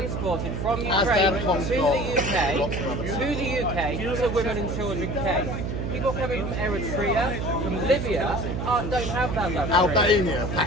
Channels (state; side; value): noise; right; hum, 3 dB below the sound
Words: from As Ukraine their to consul. the UK, to women and children came. People coming from Eritrea, from Libya, don't have that luxury. Albania,